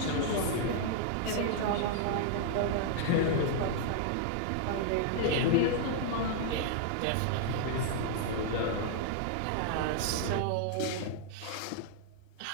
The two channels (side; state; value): both; different; correlation -0.01